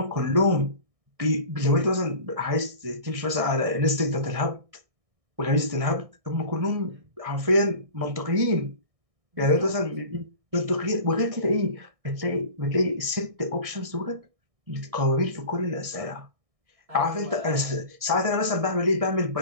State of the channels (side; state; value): left; late; 1.6 ms